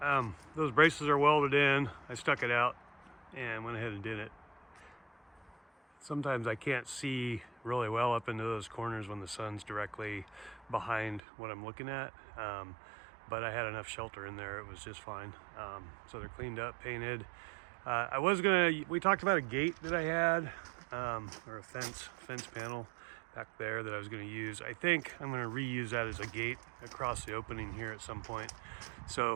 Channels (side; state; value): left; drops out; at 11.2 s